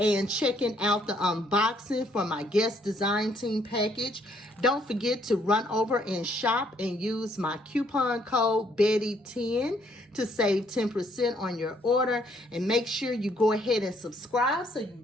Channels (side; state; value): both; normal; correlation 0.68